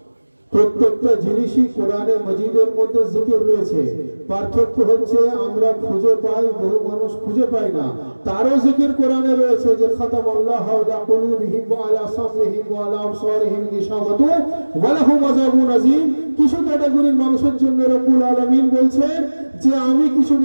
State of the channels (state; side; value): inverted; both; correlation -1.00